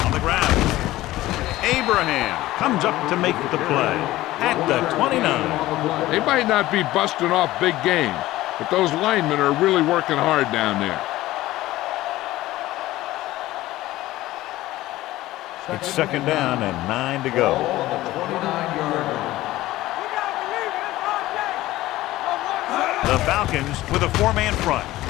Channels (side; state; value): right; quieter; 16.6 dB